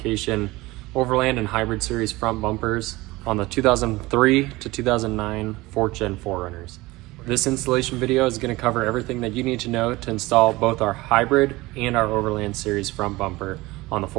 Overland and Hybrid Series front bumpers on the 2003 to 2009 4th Gen 4Runners. This installation video is going to cover everything that you need to know to install both our Hybrid and our Overland Series front bumper on the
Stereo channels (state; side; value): quieter; left; 20.4 dB